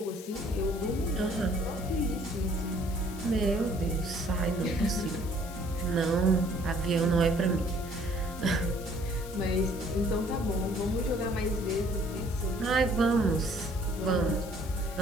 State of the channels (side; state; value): left; noise; hiss, 16 dB below the sound